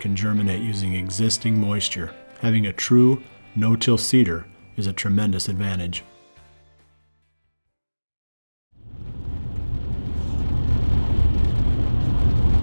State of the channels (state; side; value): inverted; both; correlation -1.00